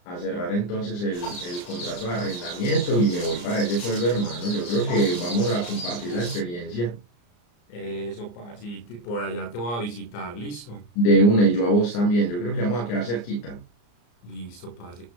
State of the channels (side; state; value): right; late; 34 ms